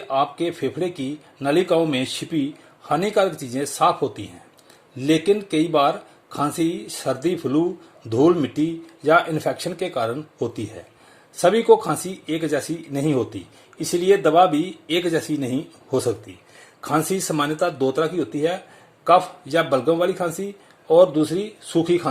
आपके फेफड़े की नलिकाओं में छिपी हानिकारक चीजें साफ होती हैं, लेकिन कई बार खांसी सर्दी, फ्लू, धूल मिट्टी या इन्फेक्शन के कारण होती है। सभी को खांसी एक जैसी नहीं होती, इसलिए दवा भी एक जैसी नहीं हो सकती। खांसी सामान्यतः दो तरह की होती है, कफ या बलगम वाली खांसी और दूसरी सूखी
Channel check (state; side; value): identical; both; correlation 1.00